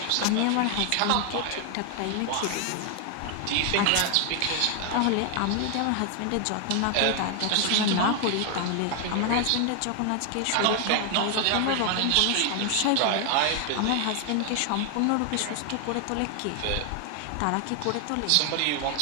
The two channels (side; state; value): both; different; correlation 0.00